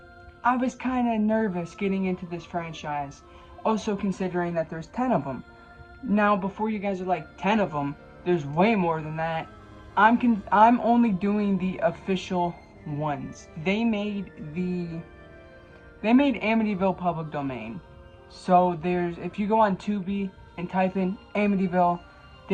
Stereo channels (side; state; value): both; identical; correlation 1.00